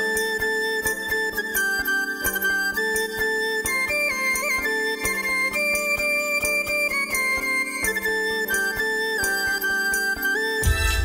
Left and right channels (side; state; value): both; identical; correlation 1.00